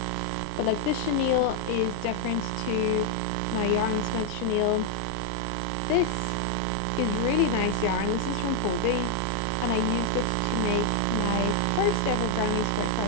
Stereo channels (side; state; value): both; different; correlation 0.00